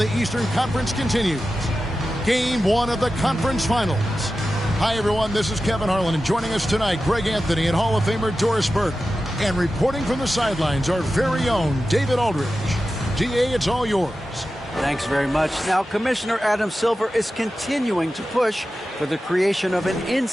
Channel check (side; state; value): both; normal; correlation 0.93